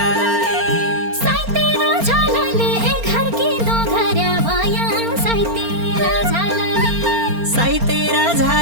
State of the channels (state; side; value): late; left; 4.3 ms